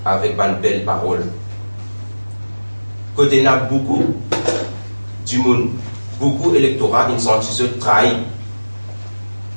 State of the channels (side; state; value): both; inverted; correlation -1.00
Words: avec une belle parole. Côté n'a beaucoup du monde, beaucoup d'électorats, ils sont trahis.